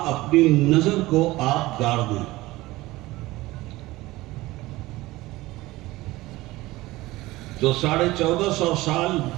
اپنی نظر کو آپ گاڑ دیں۔ جو 1450 سال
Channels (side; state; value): left; quieter; 18.9 dB